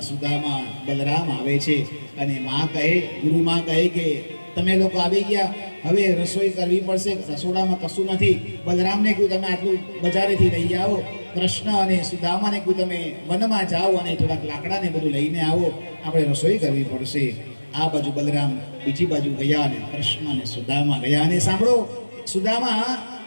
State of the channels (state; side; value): inverted; both; correlation -1.00